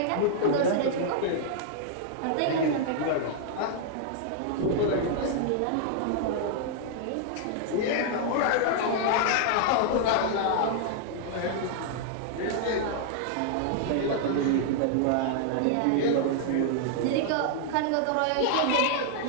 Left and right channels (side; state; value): both; different; correlation -0.01